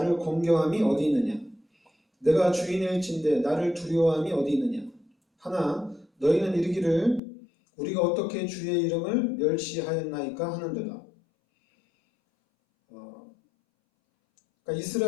어디 있느냐? 내가 주인일진데 나를 두려워함이 어디 있느냐? 하나 너희는 이르기를 우리가 어떻게 주의 이름을 멸시하였나이까 하는도다. 그러니까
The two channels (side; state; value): right; drops out; at 7.2 s